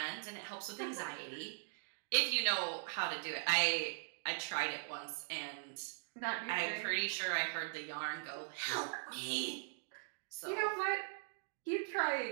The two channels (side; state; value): left; silent; digital silence